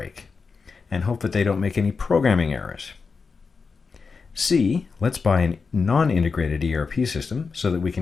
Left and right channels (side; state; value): right; quieter; 4.9 dB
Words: and hope that they don't make any programming errors? C, let's buy a non-integrated ERP system so that we